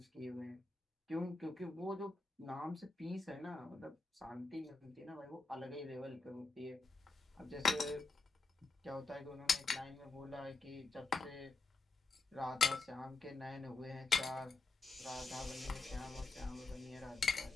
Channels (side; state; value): right; quieter; 3.6 dB